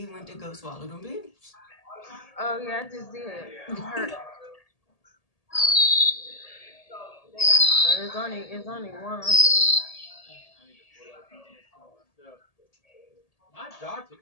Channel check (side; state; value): right; late; 1.8 ms